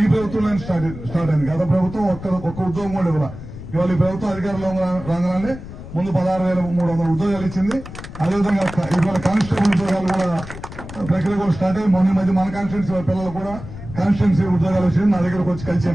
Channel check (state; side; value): noise; left; rumble, 12 dB below the sound